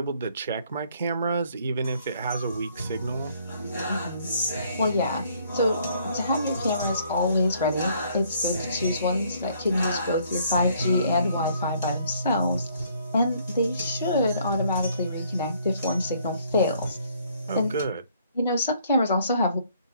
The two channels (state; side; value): inverted; both; correlation -0.64